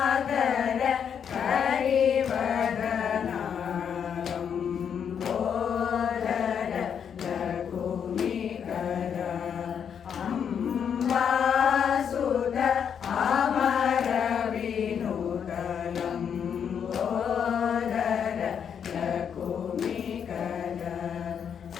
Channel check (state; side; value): quieter; right; 7.8 dB